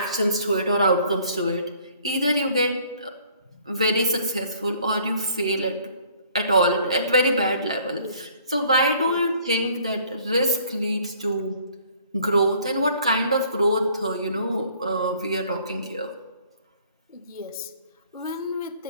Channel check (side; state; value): both; inverted; correlation -0.58